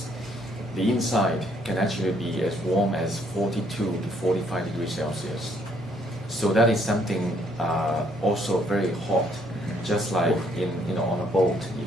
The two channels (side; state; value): both; normal; correlation 0.67